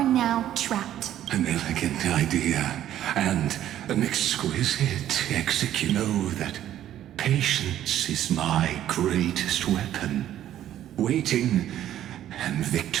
now trapped. An elegant idea, and an exquisite execution. Know that patience is my greatest weapon. Waiting and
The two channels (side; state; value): left; quieter; 11.9 dB